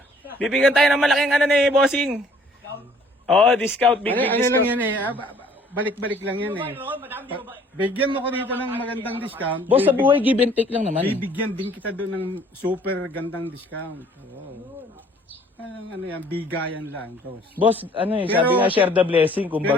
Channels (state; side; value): normal; both; correlation 0.58